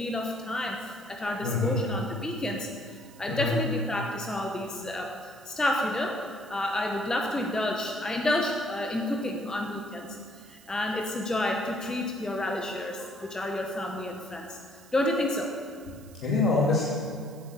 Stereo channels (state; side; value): noise; right; hiss, 23 dB below the sound